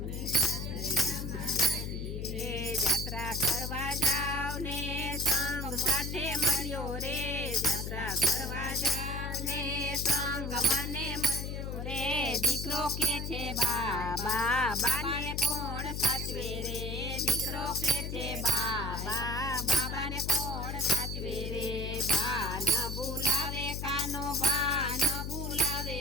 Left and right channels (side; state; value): left; noise; hum, 4 dB below the sound